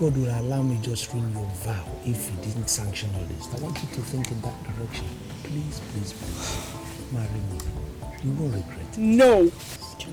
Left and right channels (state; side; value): identical; both; correlation 1.00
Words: will allow me just ruin your vow if He didn't sanction all this? I want you to think in that direction. Please, please, please. Marry me. You won't regret it. No.